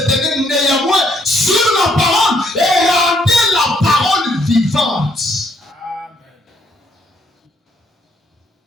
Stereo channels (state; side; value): normal; both; correlation 0.69